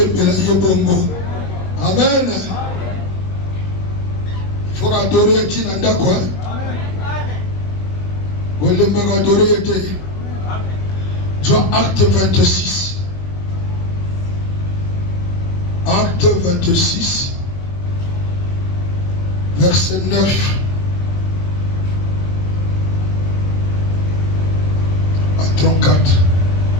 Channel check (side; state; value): right; late; 21 ms